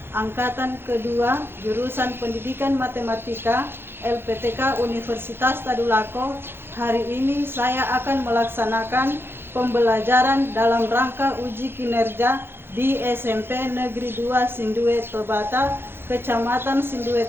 angkatan kedua jurusan Pendidikan Matematika LPTK Universitas Tadulako. Hari ini saya akan melaksanakan pembelajaran dalam rangka uji kinerja di SMP Negeri 2 Sindue Tobata, Kecamatan Sindue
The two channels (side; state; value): left; late; 0.11 ms